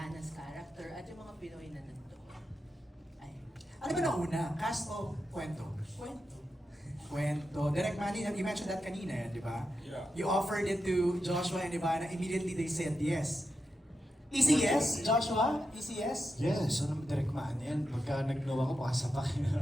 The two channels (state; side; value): normal; both; correlation 0.88